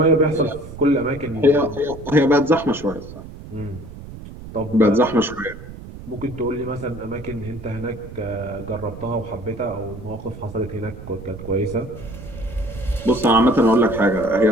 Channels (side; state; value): right; noise; rumble, 14 dB below the sound